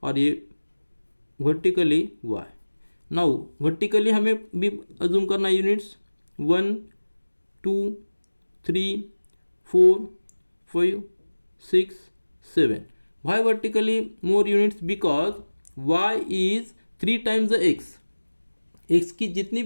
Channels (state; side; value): inverted; both; correlation -1.00